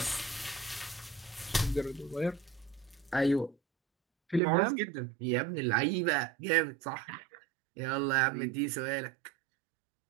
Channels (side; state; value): left; drops out; at 4.4 s